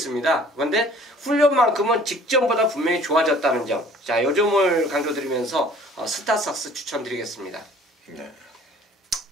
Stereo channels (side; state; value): both; normal; correlation 0.52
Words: 그런데 훈련만큼은 직전보다 분명히 좋아졌다는 점, 자, 요 점을 강조드리면서 스타삭스 추천드리겠습니다. 네.